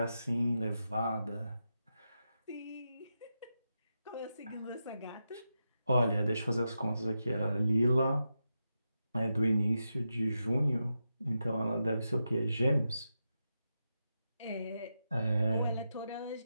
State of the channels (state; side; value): inverted; both; correlation -0.88